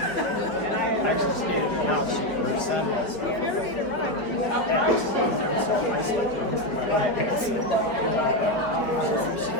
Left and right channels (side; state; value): right; late; 4.6 ms